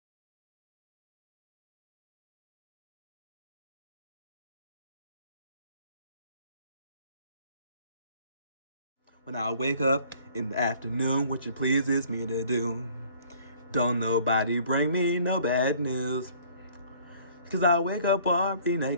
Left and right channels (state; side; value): inverted; both; correlation -0.56